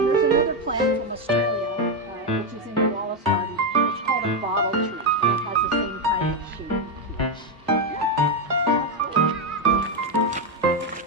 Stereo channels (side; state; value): both; normal; correlation 0.06